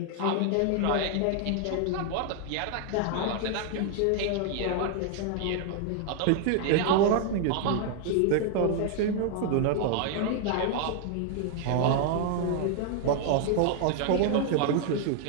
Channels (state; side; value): different; both; correlation 0.00